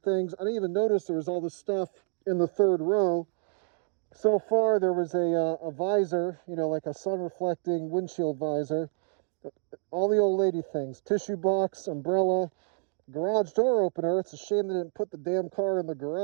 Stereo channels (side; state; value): left; silent; digital silence